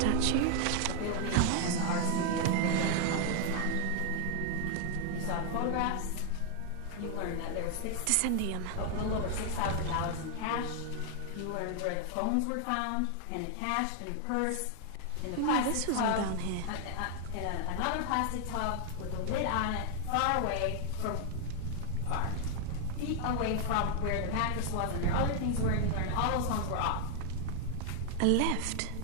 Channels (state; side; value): different; both; correlation 0.00